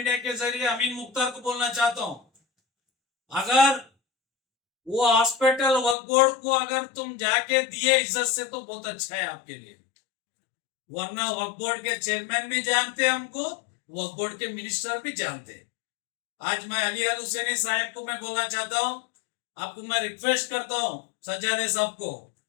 के जरिए अमीन मुख्तार को बोलना चाहता हूं, अगर वो हॉस्पिटल वक्फ बोर्ड को अगर तुम जाके दिए इज्जत से तो बहुत अच्छा है आपके लिए, वरना वक्फ बोर्ड के चेयरमैन भी जानते हैं हमको, वक्फ बोर्ड के मिनिस्टर भी जानते हैं। आज मैं अली अल हुसैनी साहब को मैं बोलना चाहता हूं, आपको मैं रिक्वेस्ट करता हूं सज्जादे साहब को,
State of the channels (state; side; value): drops out; right; at 6.0 s